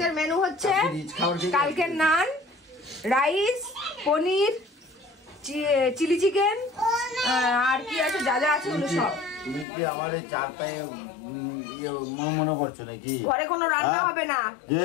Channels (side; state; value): right; drops out; at 9.7 s